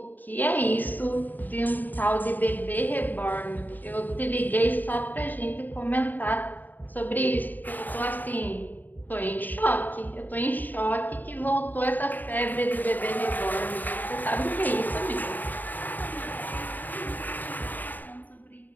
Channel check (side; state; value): right; late; 0.086 ms